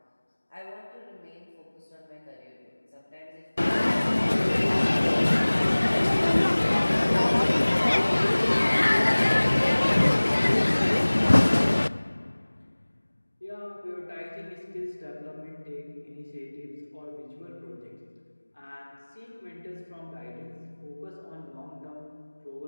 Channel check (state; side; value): inverted; both; correlation -1.00